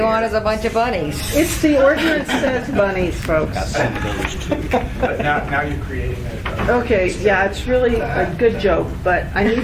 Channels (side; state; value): both; identical; correlation 1.00